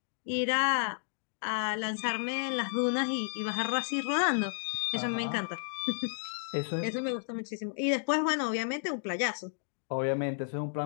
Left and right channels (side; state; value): right; silent; digital silence